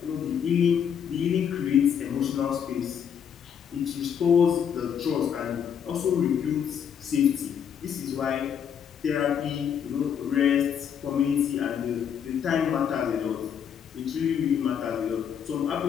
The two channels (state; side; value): quieter; right; 8.1 dB